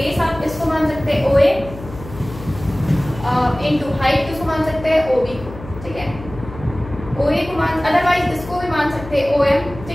आप इसको मान सकते हैं OA इंटू हाइट किसको मान सकते हैं, OB को, ठीक है। OA को मान, अदरवाइज इसको भी मान सकते हैं OM,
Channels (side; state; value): left; noise; hum, 14 dB below the sound